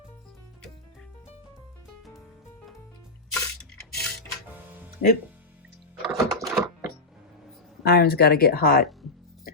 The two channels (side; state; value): right; quieter; 3.2 dB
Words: Oop. Iron's got to get hot.